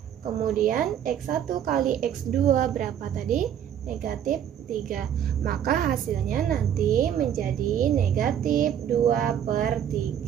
Kemudian X1 kali X2 berapa tadi? Negatif 3. Maka hasilnya nanti menjadi negatif 2 per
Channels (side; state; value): left; quieter; 9.6 dB